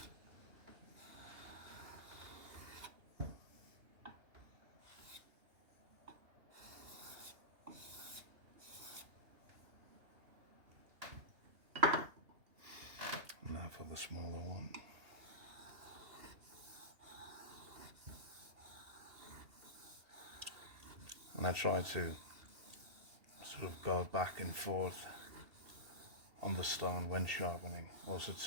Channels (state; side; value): late; left; 2.8 ms